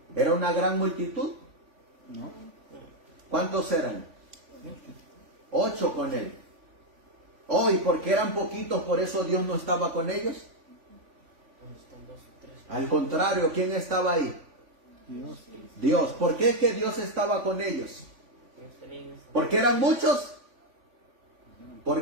¿Era una gran multitud? No. ¿Cuántos eran? 8 con él. Oh, y porque eran poquitos, por eso Dios no estaba con ellos. Al contrario, ¿quién estaba ahí? Dios. Dios. ¿Por qué es que Dios estaba con ellos? ¿Porque eran muchos? ¿Por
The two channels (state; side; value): late; left; 3.5 ms